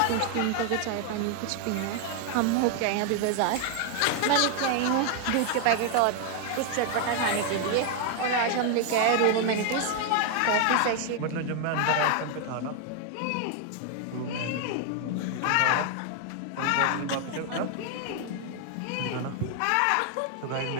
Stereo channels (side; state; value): both; different; correlation 0.00